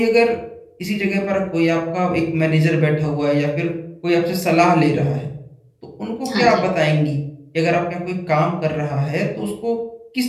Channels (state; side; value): identical; both; correlation 1.00